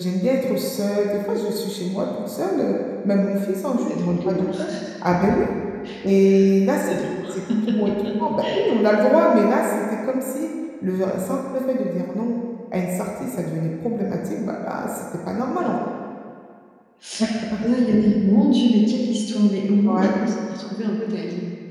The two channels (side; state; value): both; identical; correlation 1.00